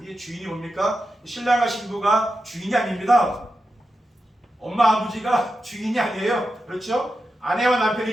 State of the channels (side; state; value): both; normal; correlation 0.90